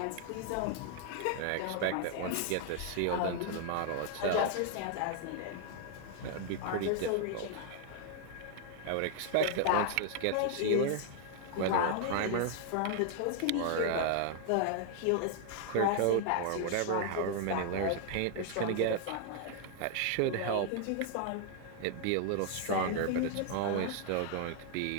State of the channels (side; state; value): both; different; correlation 0.00